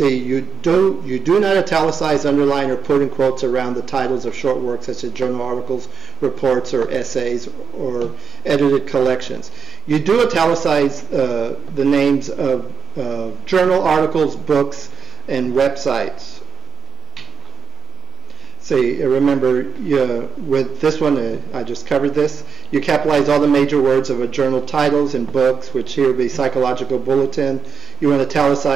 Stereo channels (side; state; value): left; quieter; 6.4 dB